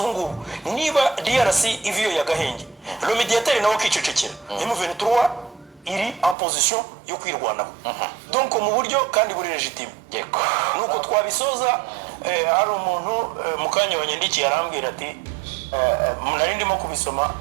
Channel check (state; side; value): drops out; left; at 6.4 s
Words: ngubu niba DRC iviyo yagahenge le mediateur nawe akicecekera M23 iri en position yo kwirwanaho donc mu buryo kandi buri legitime yego nuko twabisoza hari umuntu mukanya wanyandikiye arambwira ati nari ndimo kubisoma